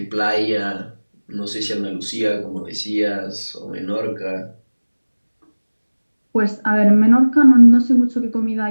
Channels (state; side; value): inverted; both; correlation -1.00